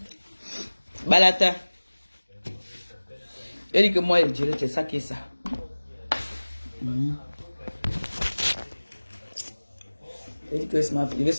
Balata. J'ai dit que moi, je dirais c'est ça qui est ça. J'ai dit que je vais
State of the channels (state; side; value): inverted; both; correlation -1.00